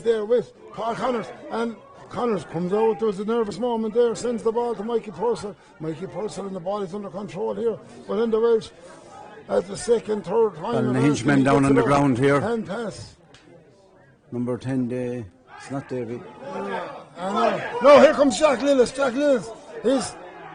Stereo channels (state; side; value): identical; both; correlation 1.00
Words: there with Paul Connors. And Connors comes out. There's a nervous moment there. Sends the ball to Mikey Purcell. And the ball is under control here. But in the Welsh, at the second, third time. Ballinahinch men down on the ground here. Hand pass. Number 10, it's not David. No, here comes Jack Lillis. He's